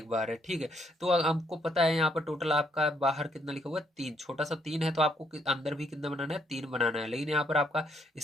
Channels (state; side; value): normal; both; correlation 0.72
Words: बार है। ठीक है, तो हमको पता है यहाँ पर टोटल आपका बाहर कितना लिखा हुआ है 3, छोटा सा 3 है, तो आपको अंदर भी कितना बनाना है 3 बनाना है। लेकिन यहाँ पर आपका